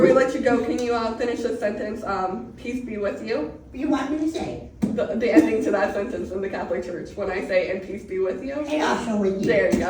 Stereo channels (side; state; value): both; identical; correlation 1.00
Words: let you go, can you finish this sentence? Peace be with you. You want me to say? The ending to that sentence in the Catholic Church when I say, and peace be with you. And also with you. There you